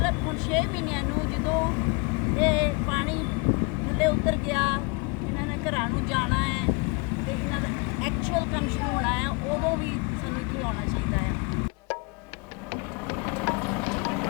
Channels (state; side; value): quieter; right; 29.6 dB